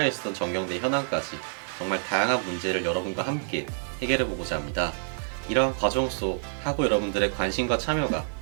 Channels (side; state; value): left; silent; digital silence